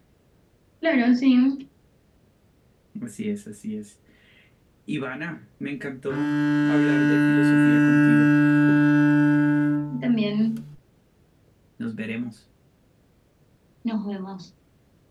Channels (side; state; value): both; identical; correlation 1.00